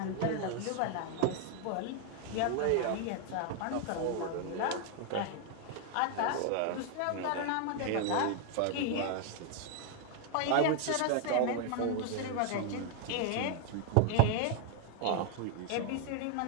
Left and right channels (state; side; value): different; both; correlation 0.00